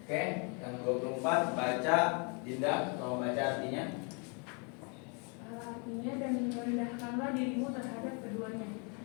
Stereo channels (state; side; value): quieter; right; 35.7 dB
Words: Oke, yang 24 baca Dinda, kalau baca artinya. Artinya, dan merendahkanlah dirimu terhadap keduanya